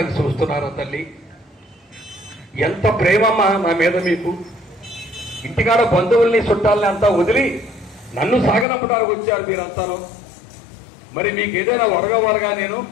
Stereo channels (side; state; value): right; drops out; at 8.7 s